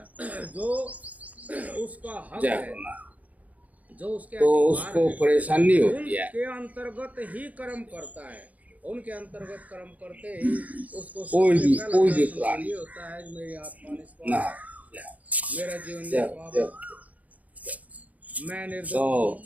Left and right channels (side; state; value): left; late; 0.073 ms